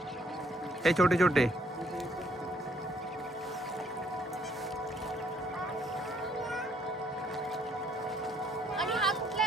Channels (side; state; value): both; normal; correlation 0.67